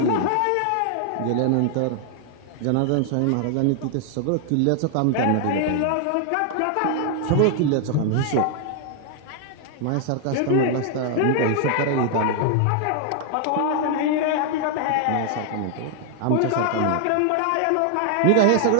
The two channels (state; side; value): different; both; correlation 0.00